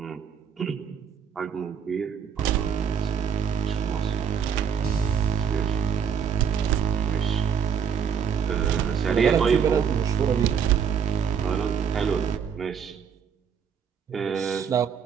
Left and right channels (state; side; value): quieter; left; 7.2 dB